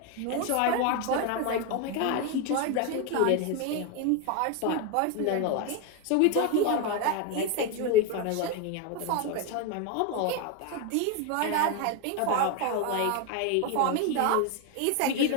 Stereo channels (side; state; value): both; different; correlation 0.02